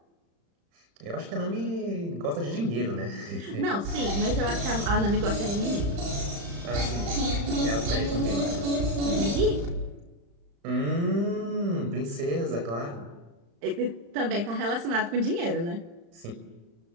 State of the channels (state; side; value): late; left; 35 ms